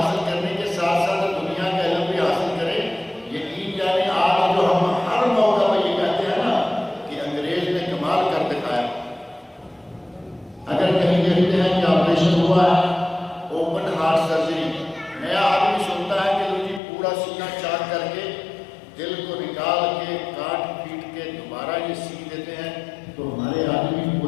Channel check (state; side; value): drops out; right; at 16.8 s